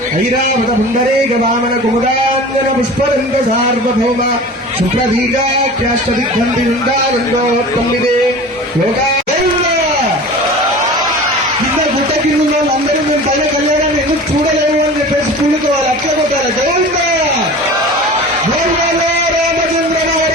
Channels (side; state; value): both; normal; correlation 0.37